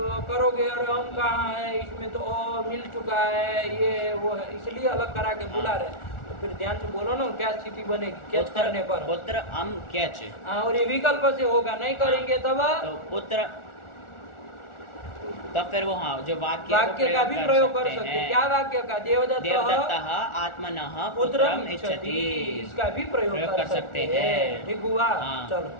करोगे अरे हम कहाँ है, इसमें तो मिल चुका है, ये वो है, इसलिए अलग करा के बुला रहे। तो फिर ध्यान से बोलो ना, क्या स्थिति बनेगी क्यच करने पर? पुत्र अम क्यच। और ये विकल्प से होगा, नहीं करेंगे तब तो पुत्र, तब फिर वो जो वाक्य का भी प्रयोग कर सकते हैं। क्या वाक्य का? देवदत्तः आत्मनः पुत्रम इच्छति, इसका भी प्रयोग कर सकते हैं। ठीक हुआ? चलो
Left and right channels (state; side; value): late; right; 1.4 ms